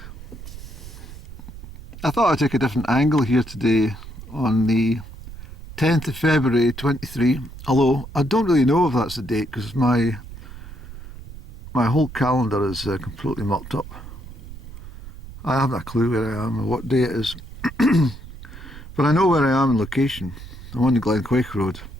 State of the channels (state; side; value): noise; right; rumble, 14 dB below the sound